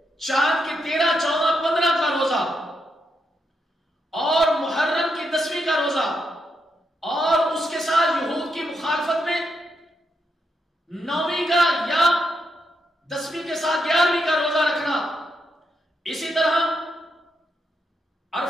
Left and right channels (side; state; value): both; normal; correlation 0.82